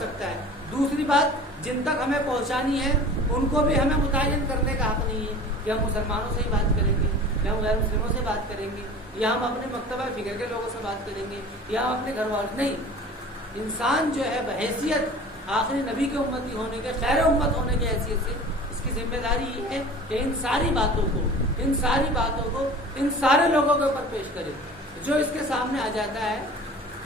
ہے۔ دوسری بات، جن تک ہمیں پہنچانی ہے ان کو بھی ہمیں متعین کرنے کا حق نہیں ہے کہ ہم مسلمانوں سے ہی بات کریں گے یا ہم غیر مسلموں سے بات کریں گے یا ہم اپنے مکتبہ فکر کے لوگوں سے بات کریں گے یا ہم اپنے گھر والوں، نہیں۔ انسان جو ہے بحیثیت آخری نبی کے امتی ہونے کے، خیر امت ہونے کی حیثیت سے اس کی ذمہ داری یہ ہے کہ ان ساری باتوں کو ان سارے لوگوں کے اوپر پیش کرے۔ جو اس کے سامنے آ جاتا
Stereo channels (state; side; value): normal; both; correlation 0.41